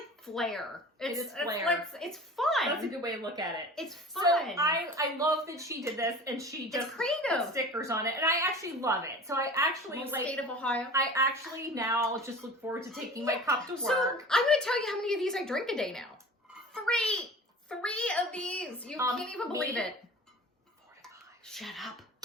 flair. It's flair. It's fun. That's a good way to look at it. It's fun. So I love that she did this and she just creative. put stickers on it, and I actually love it. So I actually State of Ohio. I actually now just look forward to taking my cup to work. So I'm going to tell you how many of these I drink a day now. 3 of these. You can't even believe it. 4 to 5. Shut up.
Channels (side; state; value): both; normal; correlation 0.39